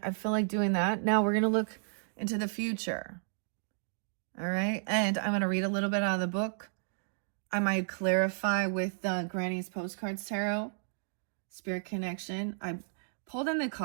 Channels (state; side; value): silent; left; digital silence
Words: feel like doing that. Now we're going to look into the future. All right. And I'm going to read a little bit out of the book. I might clarify with Granny's Postcards Tarot, Spirit Connection. I pulled in the